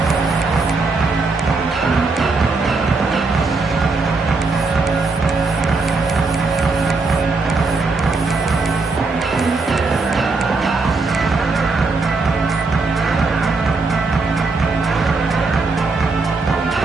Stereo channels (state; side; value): quieter; left; 3.9 dB